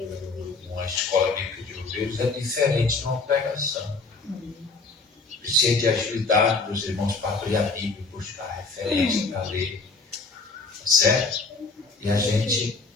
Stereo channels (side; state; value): right; quieter; 3.9 dB